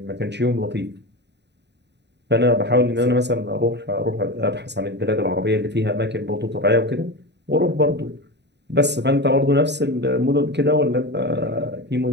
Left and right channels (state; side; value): late; left; 0.50 ms